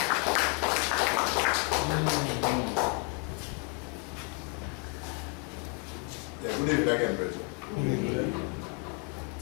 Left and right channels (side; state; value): right; quieter; 32.6 dB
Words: Yeah, good evening again, brethren.